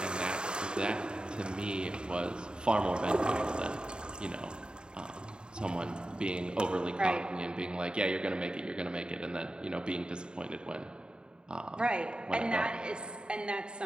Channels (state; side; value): late; left; 0.049 ms